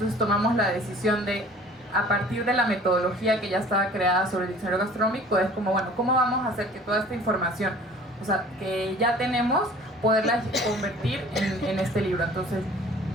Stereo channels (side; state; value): both; normal; correlation 0.48